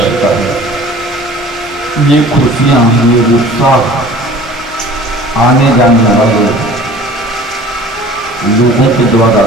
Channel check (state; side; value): normal; both; correlation 0.46